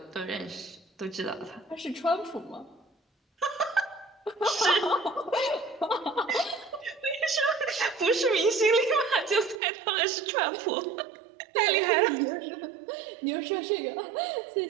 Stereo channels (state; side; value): drops out; left; at 9.6 s